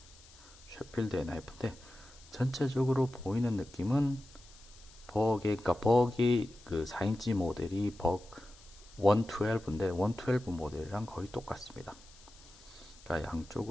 셰필드의 나이프인데, 전체적으로 보이는 느낌은 그러니까 버기 그 4인치 모델이 버그 112인데 112 모델이랑 거의 똑같습니다. 그러니까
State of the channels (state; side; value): noise; left; hiss, 23 dB below the sound